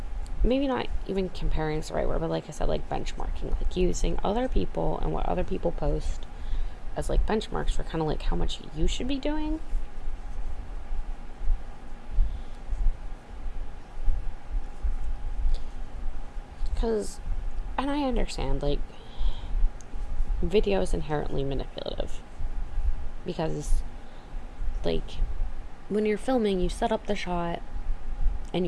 maybe not even comparing is the right word, but like I said, like benchmarking, like using other people and what other people post as like benchmarks for kind of like how much you should be doing. Because, and I understand, like, video is inherently manipulative. Because, like, when you're filming, you set up the shot and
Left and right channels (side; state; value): both; identical; correlation 1.00